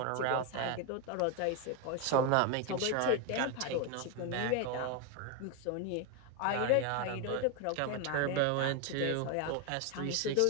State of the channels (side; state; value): both; different; correlation 0.01